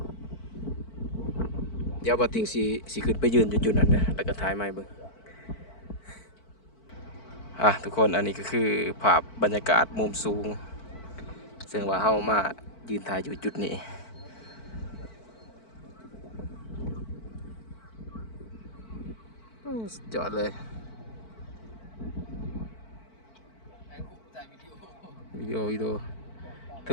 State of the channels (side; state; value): right; late; 4.5 ms